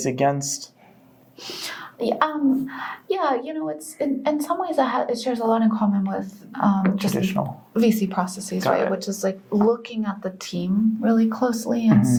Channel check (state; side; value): identical; both; correlation 1.00